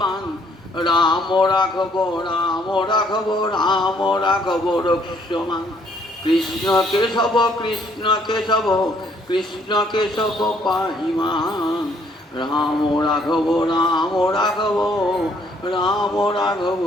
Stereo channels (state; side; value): normal; both; correlation 0.65